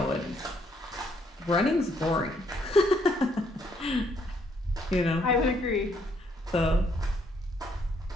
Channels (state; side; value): normal; both; correlation 0.70